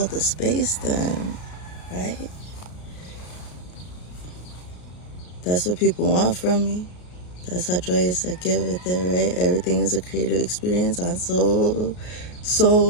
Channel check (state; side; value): late; right; 33 ms